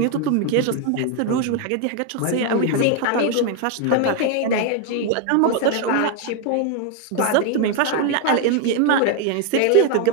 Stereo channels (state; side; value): different; both; correlation 0.00